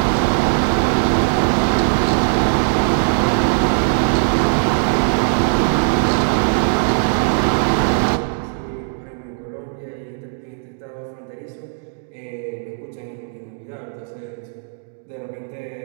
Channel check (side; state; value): left; silent; digital silence